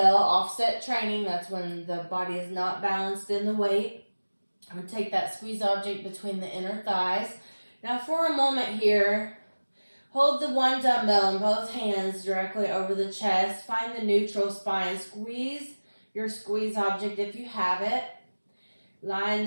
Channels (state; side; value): inverted; both; correlation -1.00